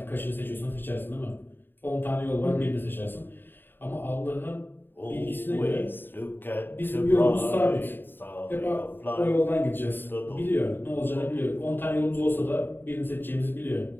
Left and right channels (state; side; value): late; right; 0.096 ms